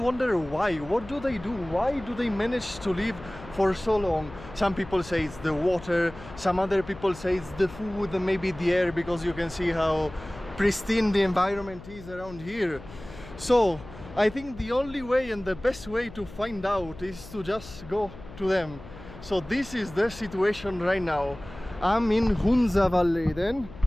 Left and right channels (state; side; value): noise; left; hum, 16 dB below the sound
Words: why. What do they do? Why do they manage to live for so long? Some people say it's the water, some other people say it's the food, maybe the air, because you can see how pristine the environment is around here. So I think the only way and the best way to find out is to just go to them. So this is the situation right now. I'm in Hunza Valley then,